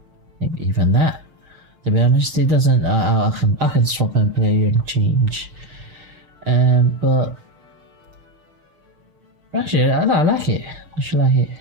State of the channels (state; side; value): late; left; 6.6 ms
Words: maybe even that. To be honest, it doesn't. I can swap and play and change. But actually, I like it. I should like it.